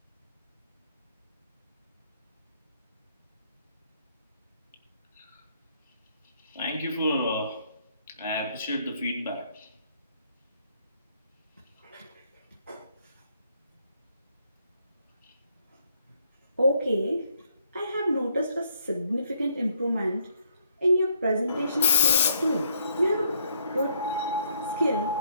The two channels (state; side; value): inverted; both; correlation -0.70